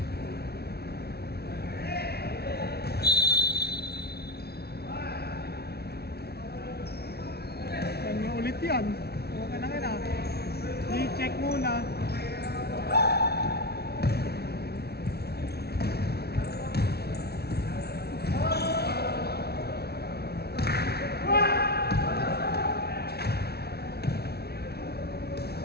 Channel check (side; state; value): right; late; 0.46 ms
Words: Kanya ulit yan. Okay na nga. I-check muna.